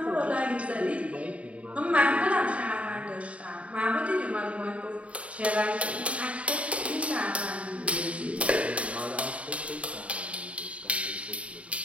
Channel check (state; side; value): late; left; 0.064 ms